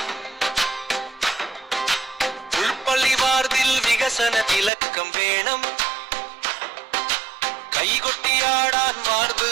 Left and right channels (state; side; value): drops out; left; at 4.7 s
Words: ഉൾപ്പള്ളി വാർതിൽ വികസന തിലക്കം വേണം കൈകൊട്ടിയാടാൻ വാർത്